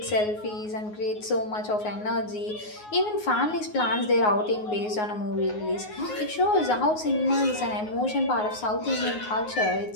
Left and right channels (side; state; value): right; late; 9.5 ms